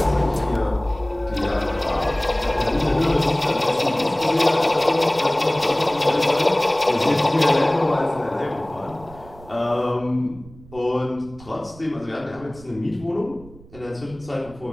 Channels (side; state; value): right; noise; rumble, 21 dB below the sound